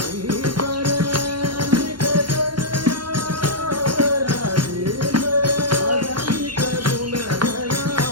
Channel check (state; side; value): late; left; 0.72 ms